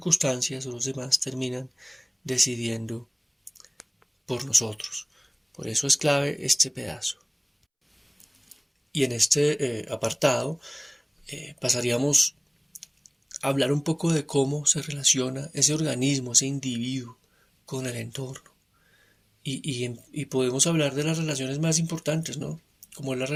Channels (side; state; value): both; identical; correlation 1.00